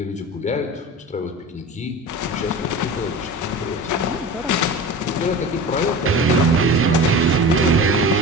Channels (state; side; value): normal; both; correlation 0.33